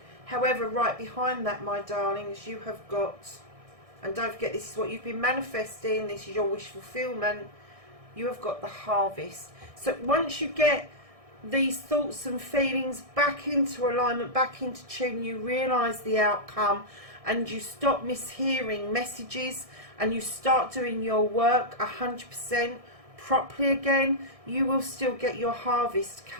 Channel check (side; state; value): left; late; 1.6 ms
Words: However, right behind that, my darlings, you have got, and don't forget, this is what you've been manifesting, this is your wish fulfillment, you have got the harvest. So once you get these thoughts and feelings back into alignment, back into tune, you realise the outcome, and you stop mishearing messages, and you start doing your work 100% properly again, you will still get your harvest